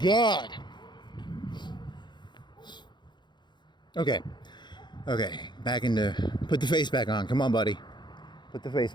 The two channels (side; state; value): right; late; 0.22 ms